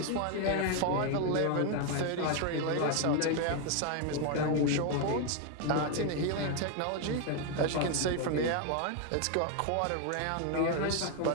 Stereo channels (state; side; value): different; both; correlation 0.01